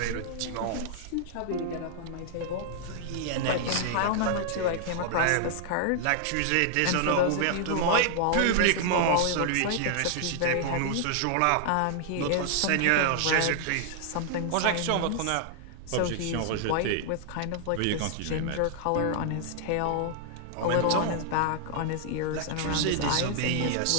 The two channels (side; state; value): both; different; correlation 0.00